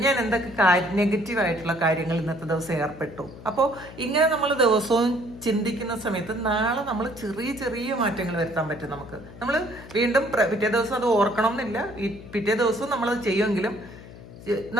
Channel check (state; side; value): noise; left; hum, 16 dB below the sound